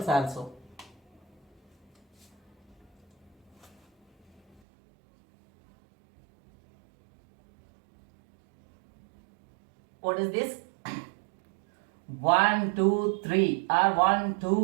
also. What is this? 1, 2, 3 or 1,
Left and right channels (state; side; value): drops out; left; at 4.6 s